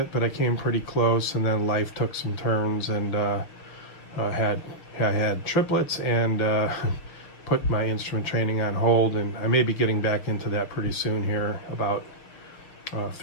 but I came pretty close, and then life took some turns, and I had triplets and put my instrument training on hold, and I may be getting back into that pretty soon here, about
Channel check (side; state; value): right; late; 6.6 ms